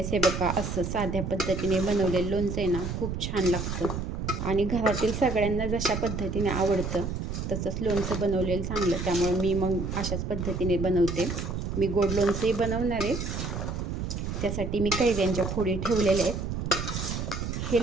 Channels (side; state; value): right; noise; rumble, 4 dB below the sound